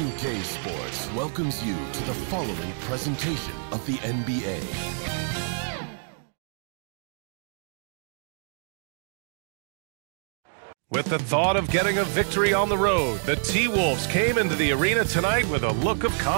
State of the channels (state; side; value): silent; left; digital silence